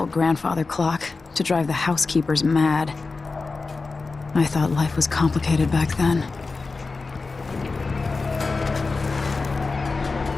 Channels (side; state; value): right; quieter; 4.0 dB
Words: grandfather clock to drive the housekeepers mad. I thought life was complicated back then.